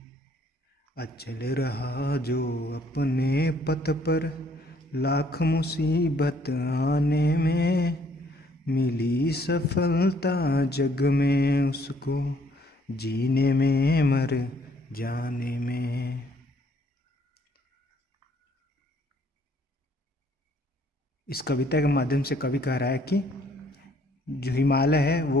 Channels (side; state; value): both; normal; correlation 0.64